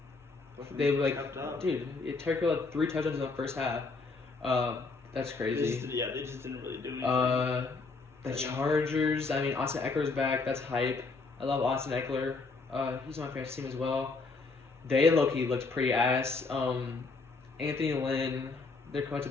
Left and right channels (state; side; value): quieter; right; 4.0 dB